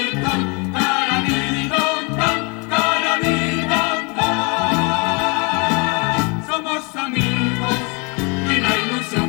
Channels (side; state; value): right; quieter; 31.5 dB